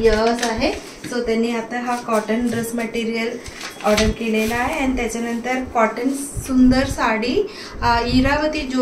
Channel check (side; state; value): both; identical; correlation 1.00